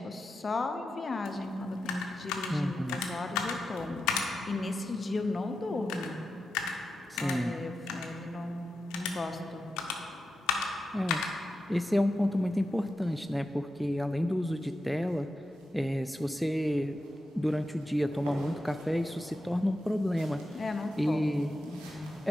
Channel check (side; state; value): both; normal; correlation 0.89